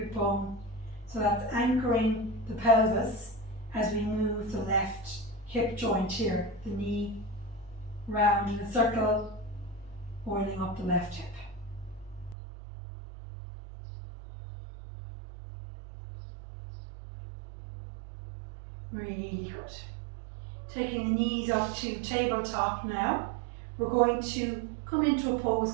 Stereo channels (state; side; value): drops out; left; at 12.4 s